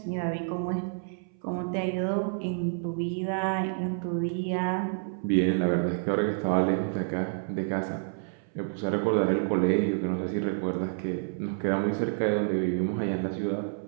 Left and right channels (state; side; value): silent; left; 58 dB below the other